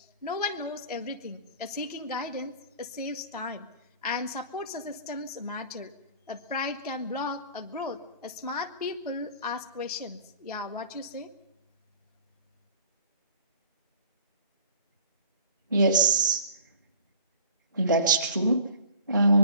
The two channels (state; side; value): inverted; both; correlation -0.46